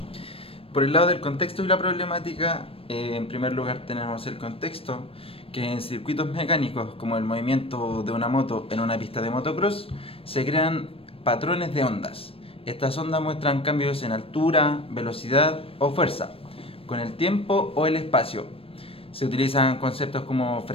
Por el lado del contexto y la problemática, en primer lugar tenemos el contexto, que en circuitos mecánicos como el movimiento de una moto en una pista de motocross se crean patrones de ondas. Estas ondas muestran cambios en altura, velocidad o fuerza, con el tiempo o el espacio. Se utilizan conceptos como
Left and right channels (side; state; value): right; late; 0.27 ms